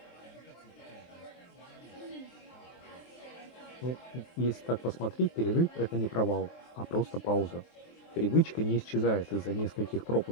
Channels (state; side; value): late; right; 23 ms